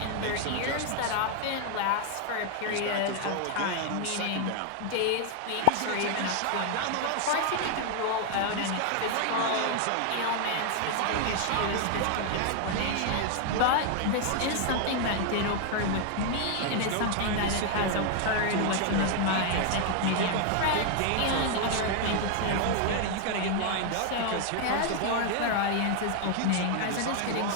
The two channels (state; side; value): different; both; correlation 0.00